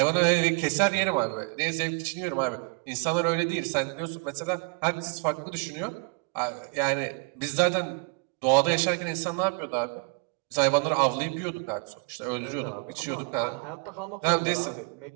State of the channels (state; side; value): quieter; left; 34.0 dB